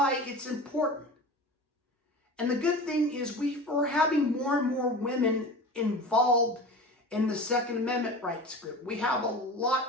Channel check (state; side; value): normal; both; correlation 0.33